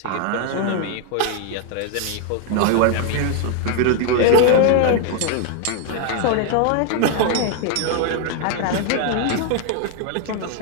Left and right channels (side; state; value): both; different; correlation 0.01